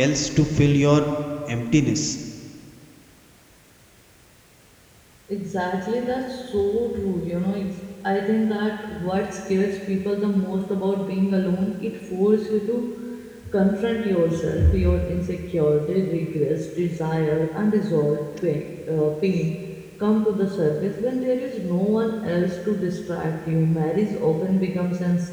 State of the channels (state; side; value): identical; both; correlation 1.00